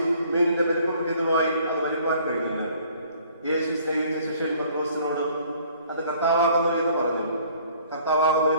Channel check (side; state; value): both; inverted; correlation -0.57